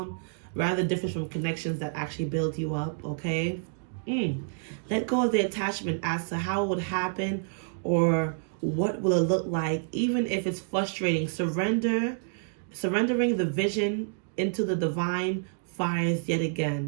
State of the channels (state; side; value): silent; left; digital silence